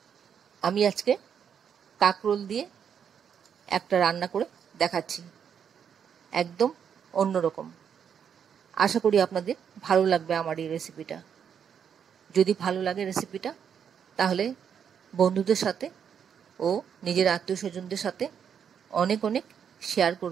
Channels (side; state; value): left; quieter; 7.8 dB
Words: আমি আজকে কাঁকরোল দিয়ে একটা রান্না করে দেখাচ্ছি, একদম অন্যরকম। আশা করি আপনাদের ভালো লাগবে আমার এই রেসিপিটা। যদি ভালো লাগে রেসিপিটা, তাহলে বন্ধুদের সাথে ও নিজের আত্মীয় স্বজনদের সাথে অনেক অনেক শেয়ার